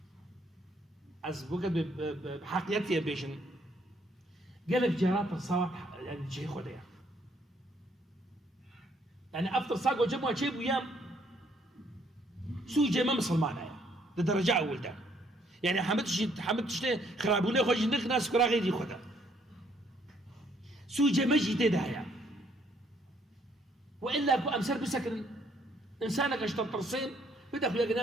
از بوقت بحقيقتي بيشن قال لك جرات ترساوا يعني جي خديا يعني افطر ساقو جمعوا شيء ويام سوي جي ما مسلمان لدرجه اول ده يعني حمدتش خرابونه خوش نخ ناس كرا غيري خدا سوي جي مجي تدايا والا كو امسر بسكن انسانك اشتر ترسيم بدا خويا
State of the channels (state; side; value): normal; both; correlation 0.67